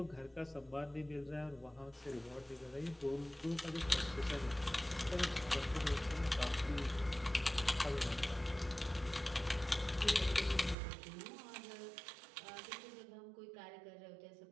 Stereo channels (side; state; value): left; drops out; at 10.8 s